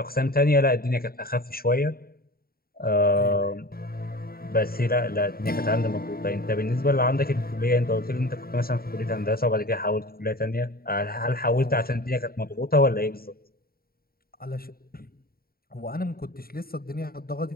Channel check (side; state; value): right; late; 0.43 ms